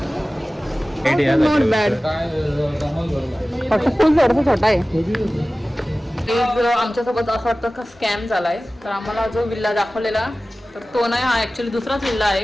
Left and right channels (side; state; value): both; normal; correlation 0.97